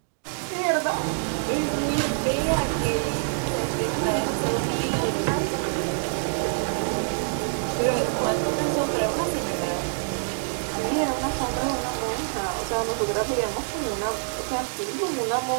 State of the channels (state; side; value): silent; left; digital silence